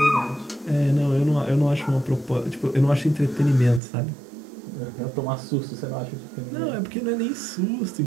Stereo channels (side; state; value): left; drops out; at 3.8 s